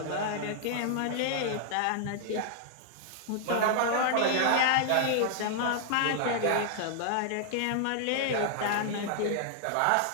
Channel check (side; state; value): both; different; correlation -0.01